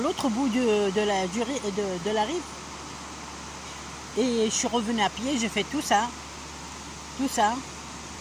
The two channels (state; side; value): identical; both; correlation 1.00